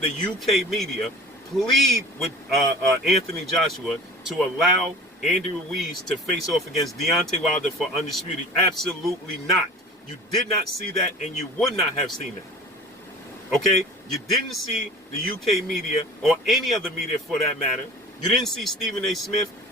UK media plead with Anthony Joshua to allow Andrew Ruiz to face off against Deontay Wilder for undisputed? Absolutely not. You did not see that, and you would not have seen that. Okay? You didn't see the UK media, or any other media for that matter. You didn't see Stephen A. Smith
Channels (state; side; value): normal; both; correlation 0.41